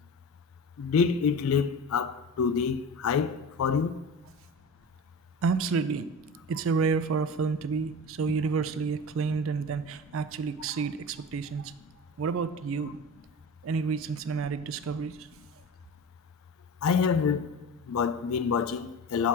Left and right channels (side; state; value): both; normal; correlation 0.31